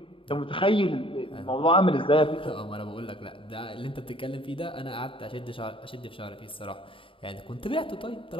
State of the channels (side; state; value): right; late; 0.25 ms